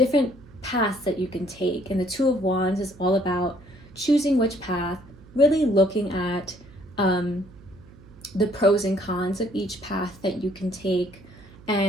paths that you can take. And the Two of Wands is all about choosing which path, really looking at the pros and cons of each path that you can take,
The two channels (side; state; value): right; noise; hum, 22 dB below the sound